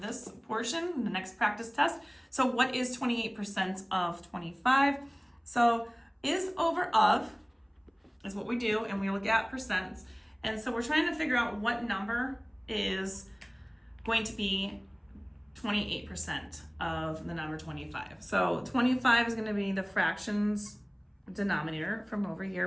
this portion, the next practice test. So what is 28% of 25? So is over of is what we do, and we look at percents. And so we're trying to figure out what number is going to be 28% of the number 25. So 25 is going to be the fractions denominator from over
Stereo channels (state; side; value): identical; both; correlation 1.00